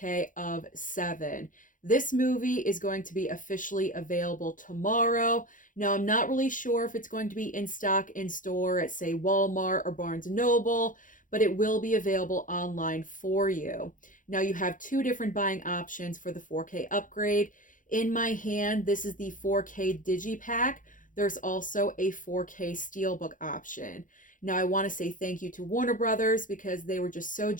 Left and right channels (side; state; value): right; late; 0.38 ms